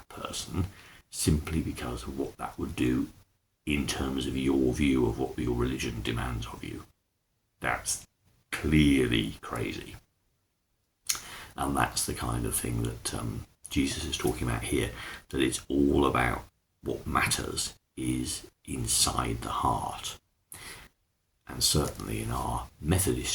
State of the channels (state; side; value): identical; both; correlation 1.00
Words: person simply because of what that would do in terms of your view of what your religion demands of you. That's clearly crazy. And that's the kind of thing that Jesus is talking about here, that it's all about what matters is inside the heart. And certainly in our